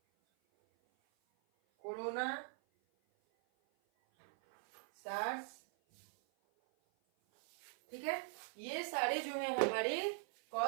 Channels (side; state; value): left; silent; 50 dB below the other